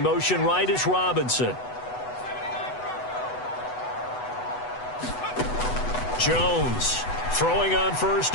motion right is Robinson. Jones throwing on 1st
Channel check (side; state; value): right; late; 8.0 ms